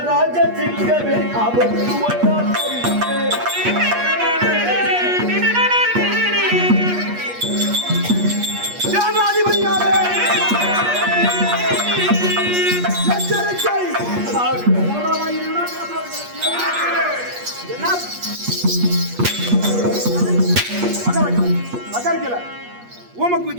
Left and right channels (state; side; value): late; left; 8.4 ms